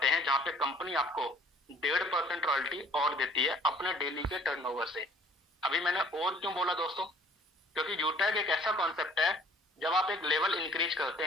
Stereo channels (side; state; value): both; normal; correlation 0.55